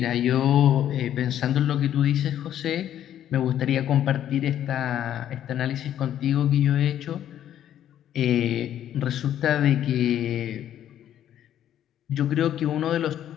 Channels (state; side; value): quieter; right; 10.9 dB